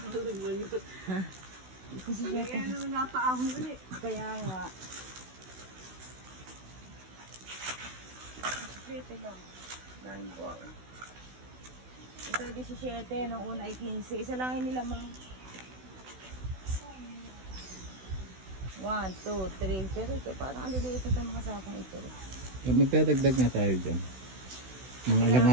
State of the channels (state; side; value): late; left; 16 ms